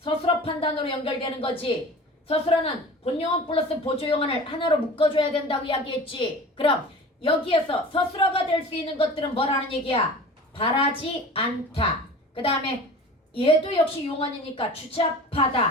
판단으로 연결되는 거지. 서술어는 본용언 플러스 보조용언을 하나로 묶어줘야 된다고 이야기했지. 그럼 여기에서 서술어가 될 수 있는 것들은 뭐라는 얘기야? 바라지 않다. 그 다음에 얘도 역시 용언이니까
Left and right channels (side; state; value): both; normal; correlation 0.39